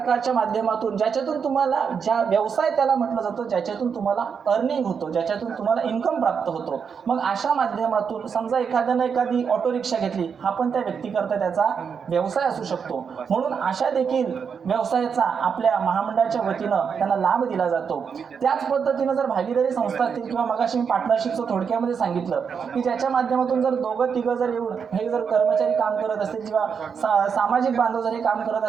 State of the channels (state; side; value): quieter; left; 6.5 dB